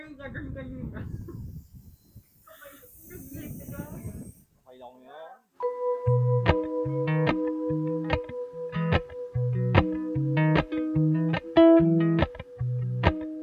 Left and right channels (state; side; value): identical; both; correlation 1.00